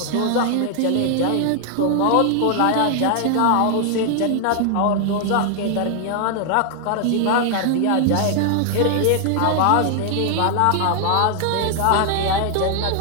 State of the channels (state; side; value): different; both; correlation 0.00